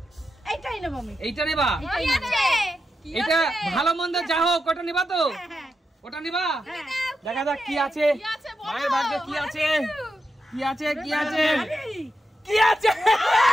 এইটাই নেব আমি। এইটা নেবা? এটা ভালো মন্দ যা হোক, ওটা নেবা তো? ওটা নেবা? দেখা যাক কি আছে মায়ের ভাগ্যে। কি আছে? কি আছে? কি আছে? কি আছে?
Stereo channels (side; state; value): both; normal; correlation 0.87